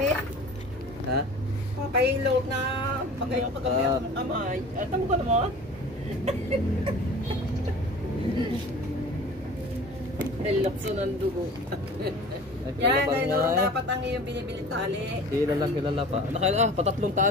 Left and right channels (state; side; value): normal; both; correlation 0.41